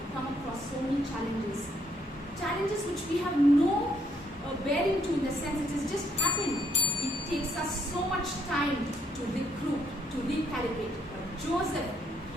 come across so many challenges. Challenges which we have no bearing to, in the sense it has just happened. It takes us so much time to recruit, to recalibrate. But Joseph,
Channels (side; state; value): both; normal; correlation 0.71